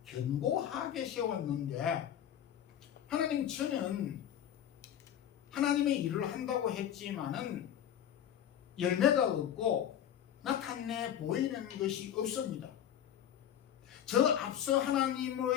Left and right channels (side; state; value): right; quieter; 10.1 dB